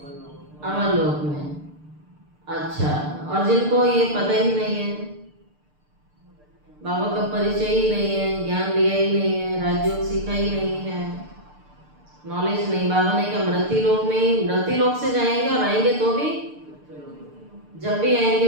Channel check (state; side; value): late; left; 6.7 ms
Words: अमर लोक में। अच्छा, और जिनको ये पता ही नहीं है, बाबा का परिचय ही नहीं है, ज्ञान लिया ही नहीं है, राजयोग सीखा ही नहीं है, नॉलेज नहीं, बाबा ने कहा मृत्यु लोक में ही, मृत्यु लोक से जाएंगे और आएंगे तो भी, जब भी